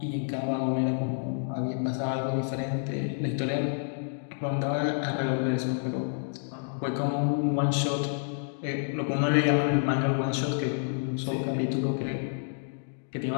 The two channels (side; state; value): right; silent; digital silence